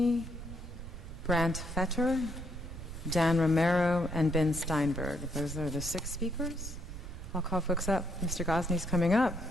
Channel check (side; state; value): right; noise; rumble, 11 dB below the sound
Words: Brant Fetter, Dan Romero, and Ben Steinberg. Those are the 6 speakers. I'll call folks up. Mr. Gosney's coming up.